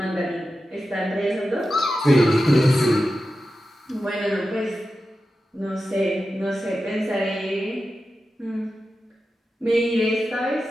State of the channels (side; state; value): both; normal; correlation 0.92